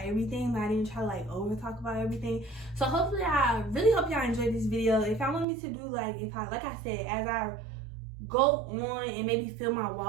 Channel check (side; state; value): left; drops out; at 5.5 s